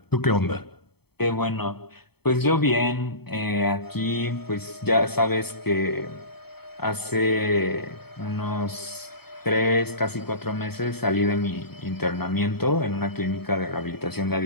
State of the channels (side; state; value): right; late; 0.97 ms